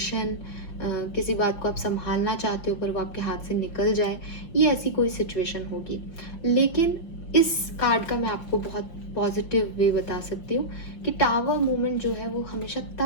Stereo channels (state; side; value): late; right; 5.8 ms